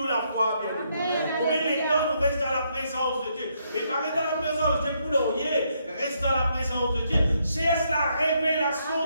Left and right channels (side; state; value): both; inverted; correlation -0.75